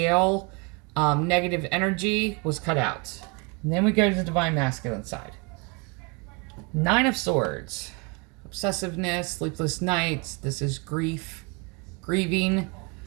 negative energy was cut out. And then we go to the Divine Masculine side. Nine of Swords. Obsessiveness, sleepless nights. This is grief, grieving.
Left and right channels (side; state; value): left; quieter; 29.4 dB